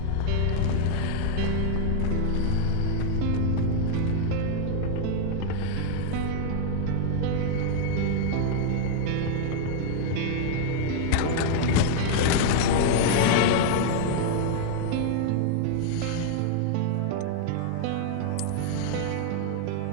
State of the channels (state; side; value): different; both; correlation -0.01